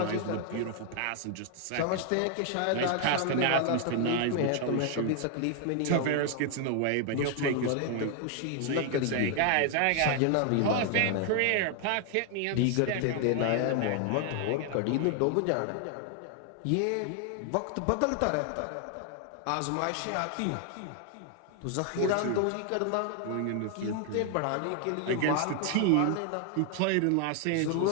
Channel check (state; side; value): different; both; correlation 0.00